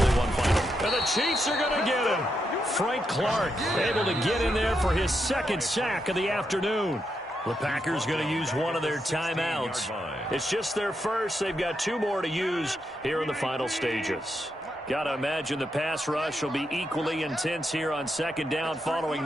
one final. And the Chiefs are going to get him. Frank Clark able to get in there for his 2nd sack of the afternoon. The Packers going to use one of their timeouts. It's just their first. They've got 2 more to use here in the final stages. Got to imagine the pass rush will be equally intense here on 2nd down following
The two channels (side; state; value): both; normal; correlation 0.83